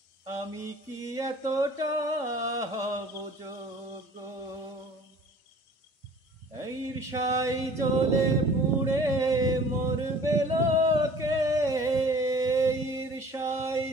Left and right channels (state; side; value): normal; both; correlation 0.48